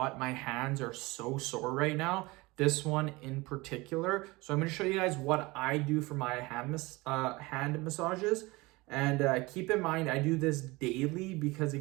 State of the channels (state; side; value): quieter; left; 22.8 dB